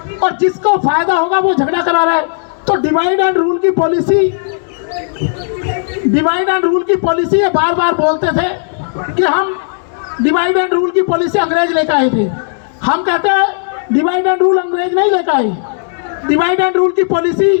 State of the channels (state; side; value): silent; right; digital silence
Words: और जिसको फायदा होगा वो झगड़ा करा रहा है। तो डिवाइड एंड रूल की पॉलिसी ये बार बार बोलते थे कि हम डिवाइड एंड रूल की पॉलिसी अंग्रेज लेकर आए थे। हम कहते हैं डिवाइड एंड रूल अंग्रेज नहीं लेकर आए। डिवाइड एंड रूल की